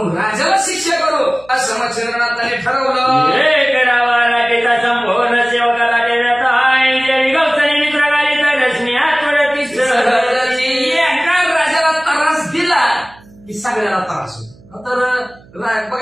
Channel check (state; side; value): noise; right; hum, 26 dB below the sound